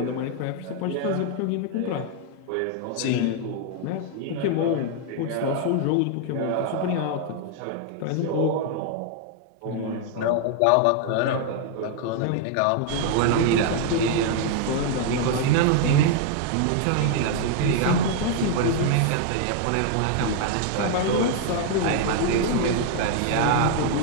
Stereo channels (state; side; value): different; both; correlation 0.00